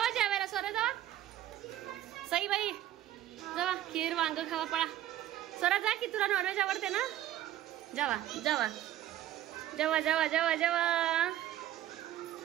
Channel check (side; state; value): left; quieter; 12.8 dB